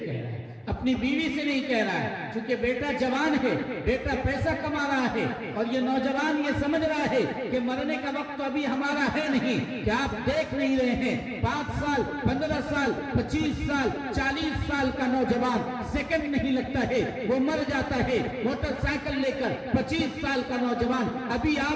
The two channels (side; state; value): both; identical; correlation 1.00